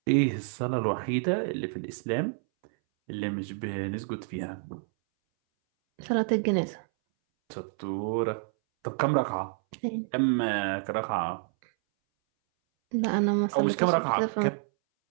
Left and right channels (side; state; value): left; silent; 59 dB below the other